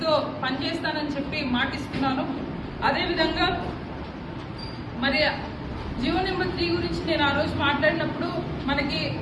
పనిచేస్తానని చెప్పి మాటిస్తున్నాను. అదేవిధంగా మరి జీవో నెంబర్ 3 గురించి నేను ఆ రోజు మాట్లాడినప్పుడు మనకి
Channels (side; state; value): both; identical; correlation 1.00